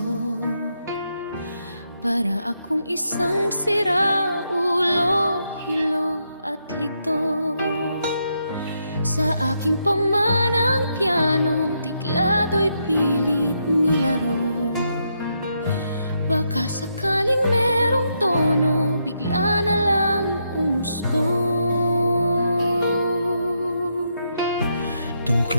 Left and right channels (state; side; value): inverted; both; correlation -0.80